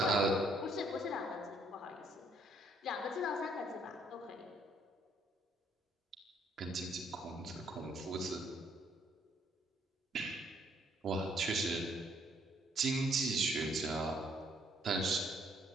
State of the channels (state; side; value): normal; both; correlation 0.67